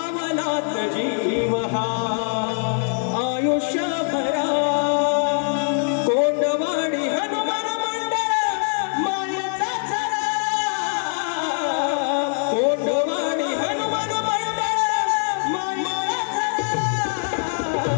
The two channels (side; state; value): right; silent; 64 dB below the other